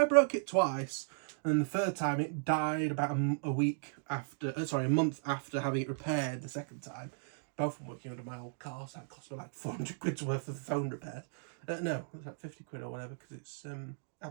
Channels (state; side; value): silent; left; digital silence